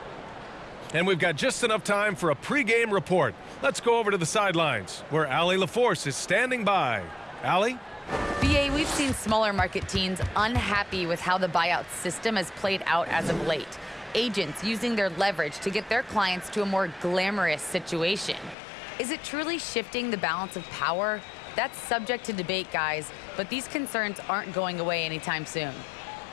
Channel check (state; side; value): drops out; right; at 18.6 s